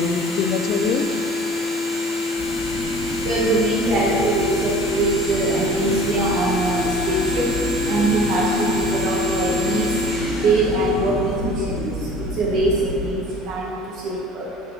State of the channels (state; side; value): normal; both; correlation 0.46